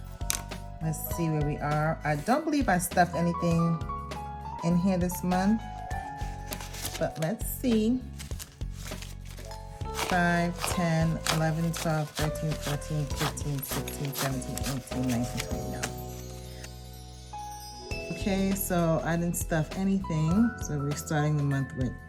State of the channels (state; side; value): identical; both; correlation 1.00